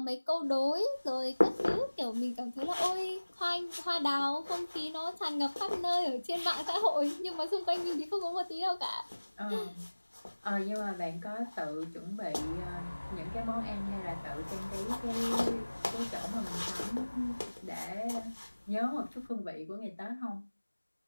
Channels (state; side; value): inverted; both; correlation -1.00